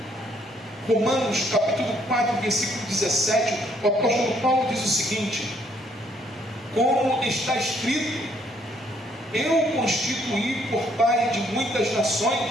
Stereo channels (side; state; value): both; normal; correlation 0.67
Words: Romanos capítulo 4, versículo 17, o apóstolo Paulo diz o seguinte: como está escrito, eu constituí por pai de muitas nações,